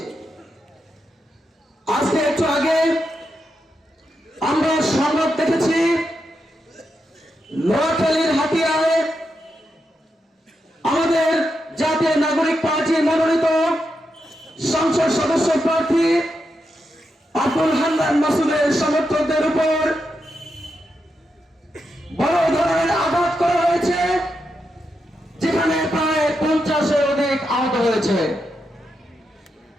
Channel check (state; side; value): normal; both; correlation 0.85